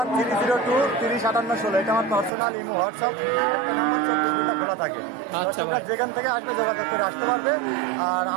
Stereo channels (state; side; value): drops out; left; at 2.3 s